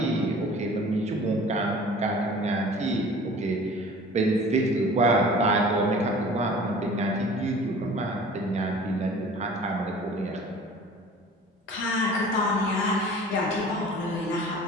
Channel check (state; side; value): normal; both; correlation 0.45